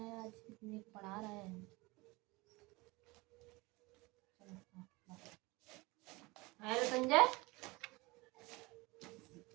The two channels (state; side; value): quieter; left; 23.5 dB